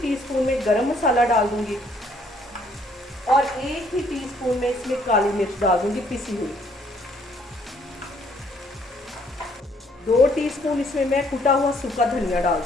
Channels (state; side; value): normal; both; correlation 0.65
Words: में गरम मसाला डाल दूँगी और 1 ही टीस्पून में इसमें काली मिर्च डाल दूँगी पिसी हुई। 2 टीस्पून इसमें मैं कुटा हुआ सूखा धनिया डाल